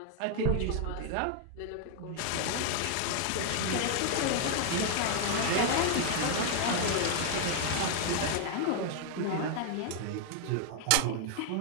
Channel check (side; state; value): both; different; correlation 0.00